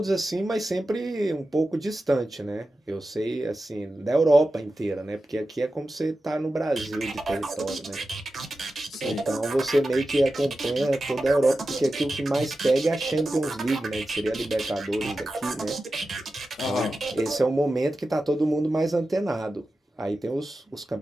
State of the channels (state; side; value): normal; both; correlation 0.93